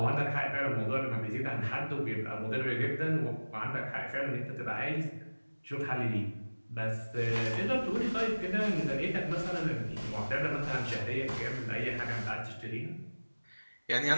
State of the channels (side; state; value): both; inverted; correlation -1.00